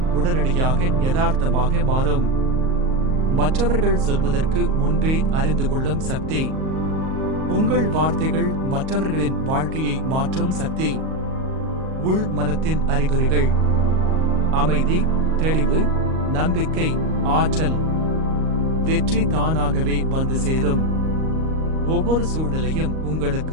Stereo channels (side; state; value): left; late; 38 ms